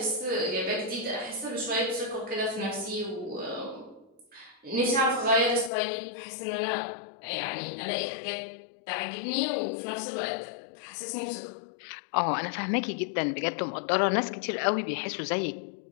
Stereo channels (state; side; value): drops out; right; at 5.7 s